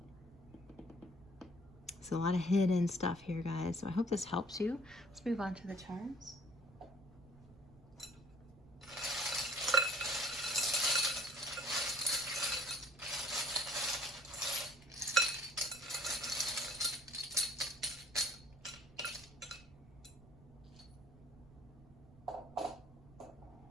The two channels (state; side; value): noise; right; rumble, 22 dB below the sound